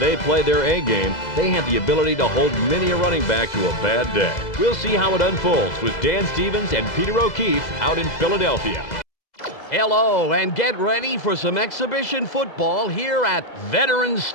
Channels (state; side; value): late; right; 2.0 ms